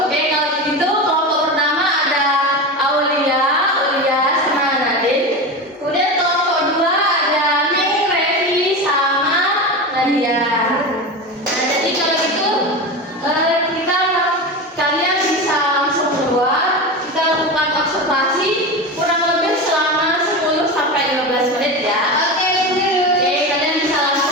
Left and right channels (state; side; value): normal; both; correlation 0.23